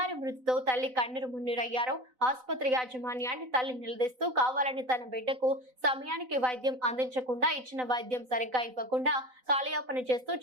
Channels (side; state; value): left; late; 4.0 ms